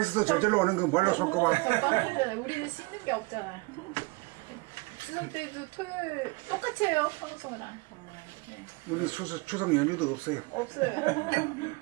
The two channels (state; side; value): quieter; left; 26.8 dB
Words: 있어도 저절로 오는 거 뭘로 손꼽아. 빵이잖아요. 우리는 씻는 게 없잖아. 추석 때도 토요일 똑같이 해요, 평소랑. 네. 우리 추석 연휴도 없어요. 없어요.